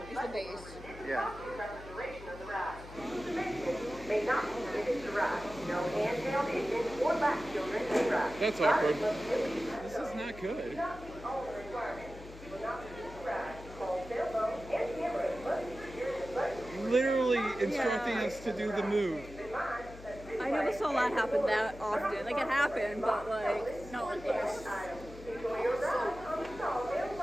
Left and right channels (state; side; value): noise; left; hum, 16 dB below the sound